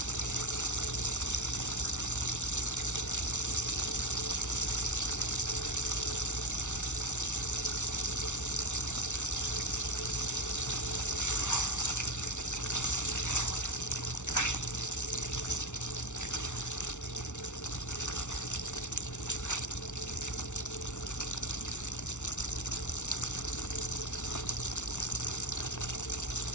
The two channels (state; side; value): late; right; 0.84 ms